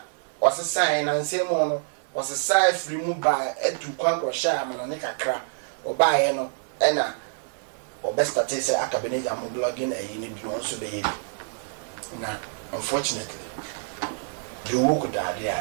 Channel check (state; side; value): silent; left; digital silence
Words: wasesa na nsemo no wasesa free mu ba etu kwa ko sha amana ne kakra obaye no ena obestate say akabeneja mo blogging ni bi no so be yi na unfortunately the work that